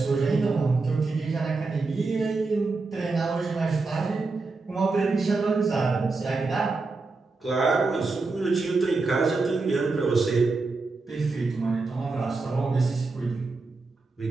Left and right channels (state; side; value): quieter; left; 3.8 dB